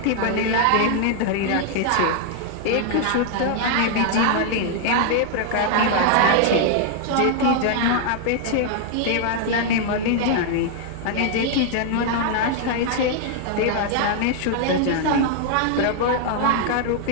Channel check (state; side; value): different; both; correlation 0.00